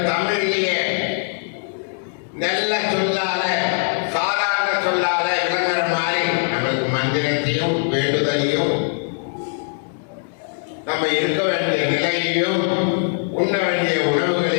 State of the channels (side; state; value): right; silent; 60 dB below the other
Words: தமிழிலேயே நல்ல சொல்லால, சாதாரண சொல்லால விளங்குற மாதிரி நம்மளுக்கு மந்திரத்தையும் வேண்டுதலையும், நம்ம இருக்க வேண்டிய நிலையையும், உண்ண வேண்டிய